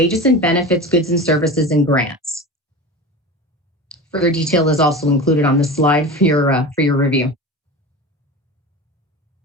and benefits, goods and services, and grants. Further detail is also included on the slide for your review.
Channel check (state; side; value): normal; both; correlation 0.30